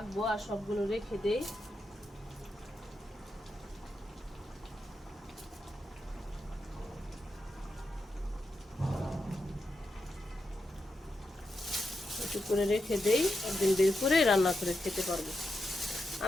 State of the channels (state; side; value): normal; both; correlation 0.86